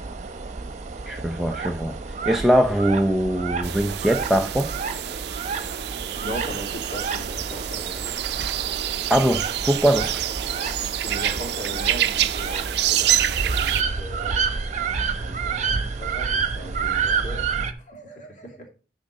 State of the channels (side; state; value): left; quieter; 3.7 dB